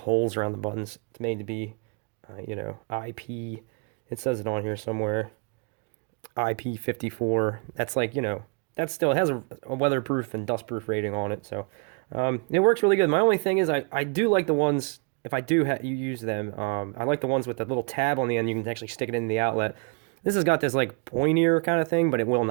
around the buttons. It's made to be, IP. It says it on here somewhere. IP54. That's like, that still has a weatherproof and dustproof rating on it, so it works really good. My only thing is I do like the ones, if I do you use them, I like the ones with the little tab on the end. You can actually stick it in the outlet. This has got this like pointier kind of thing, but it will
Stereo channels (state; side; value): quieter; left; 35.0 dB